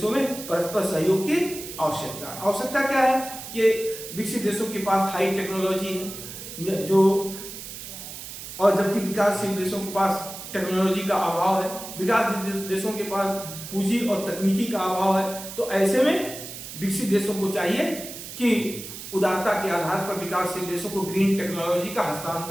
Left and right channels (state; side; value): noise; right; hiss, 11 dB below the sound